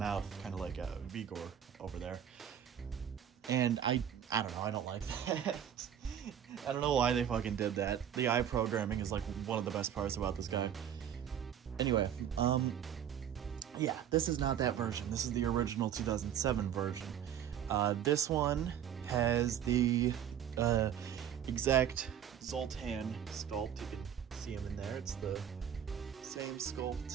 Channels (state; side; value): quieter; left; 9.5 dB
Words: kind of like a Vigor over there. And I don't know, I don't like that. I don't know why they fucking did that. The eye programming is like one of the best parts about this guy. Anyway, yeah, this is not that version. This is the original 2007 version. This one has the exact Zoltan sculpt. You can see him in there. It's the same